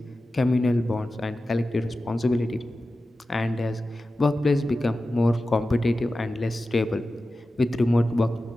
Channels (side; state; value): both; normal; correlation 0.94